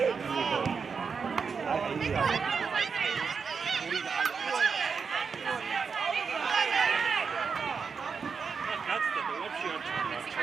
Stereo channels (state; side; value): quieter; left; 5.6 dB